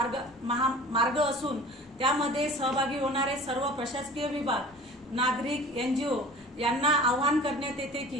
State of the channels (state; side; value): normal; both; correlation 0.42